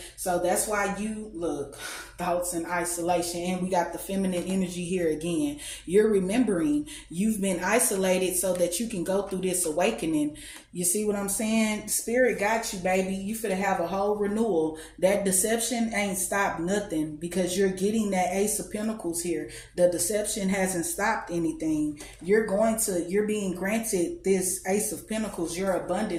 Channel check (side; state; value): both; identical; correlation 1.00